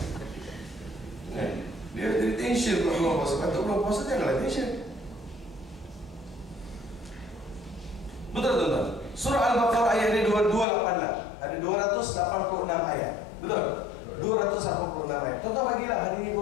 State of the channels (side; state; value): right; drops out; at 10.7 s